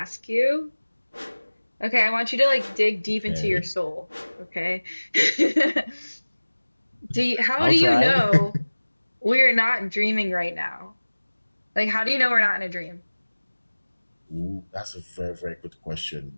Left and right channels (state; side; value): inverted; both; correlation -1.00